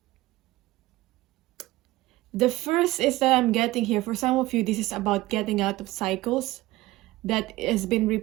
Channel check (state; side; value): quieter; left; 18.4 dB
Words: the first is that I'm getting here. For some of you, this is about getting out of cycles that has been